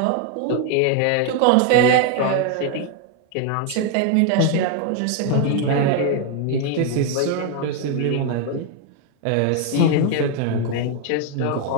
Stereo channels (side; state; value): both; different; correlation 0.01